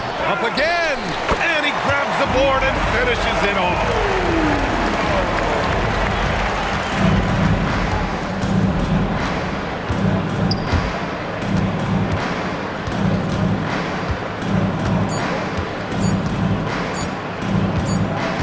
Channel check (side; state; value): both; identical; correlation 1.00